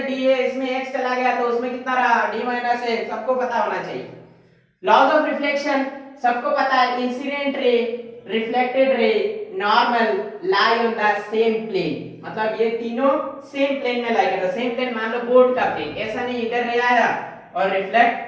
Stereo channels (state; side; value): identical; both; correlation 1.00